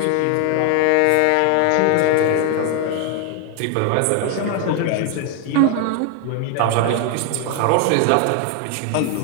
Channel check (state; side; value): different; both; correlation 0.01